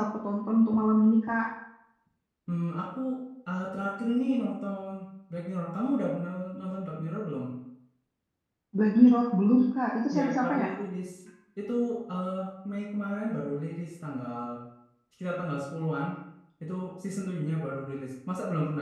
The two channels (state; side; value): identical; both; correlation 1.00